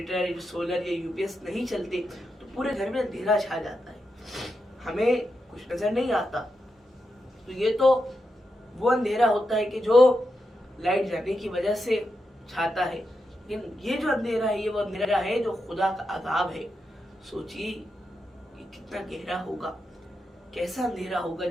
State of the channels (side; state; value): both; normal; correlation 0.86